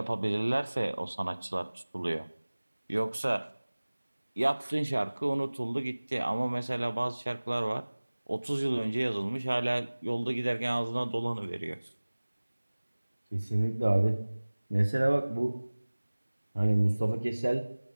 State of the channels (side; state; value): both; inverted; correlation -1.00